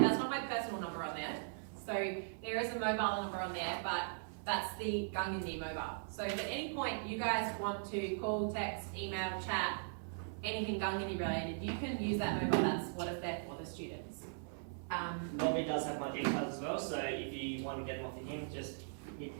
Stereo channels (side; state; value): left; silent; 52 dB below the other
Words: That's not my personal number on there. So there is a mobile number on there, but that's the Gungandi mobile. So if at any point you guys want to call, text, email, chat, anything Gungandi related, you can use that mobile. That's what is there for the students. Robbie does have my details as well. So if you want to get them off of him, just hit